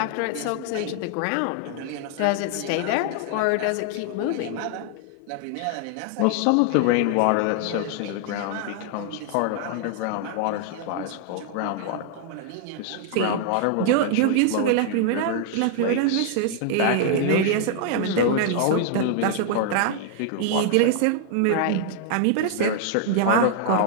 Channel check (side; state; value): both; different; correlation 0.00